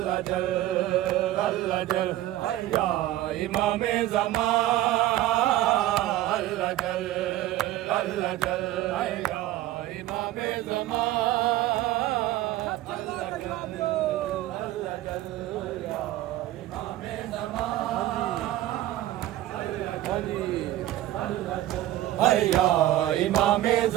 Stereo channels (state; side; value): quieter; left; 14.7 dB